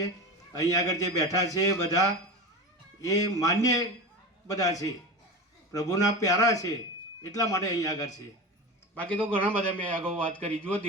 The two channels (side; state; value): both; normal; correlation 0.26